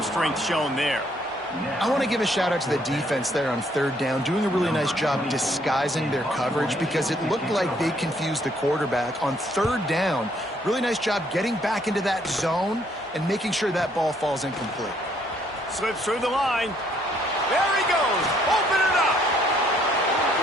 strength shown there. I want to give a shout out to the defense there on third down, doing a really nice job disguising their coverage because it looked like they confused the quarterback on third down. Really nice job getting back into that zone and making sure that ball falls incomplete. Slips through the line. There he goes. Open it up.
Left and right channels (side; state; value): both; normal; correlation 0.67